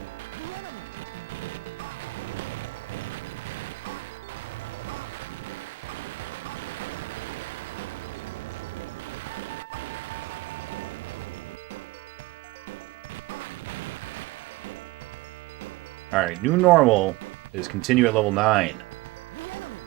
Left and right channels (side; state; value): left; quieter; 20.9 dB